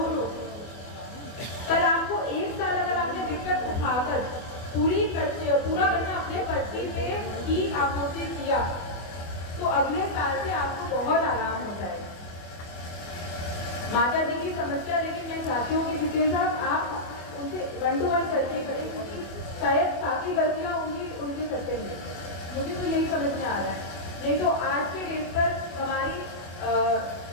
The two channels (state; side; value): late; right; 24 ms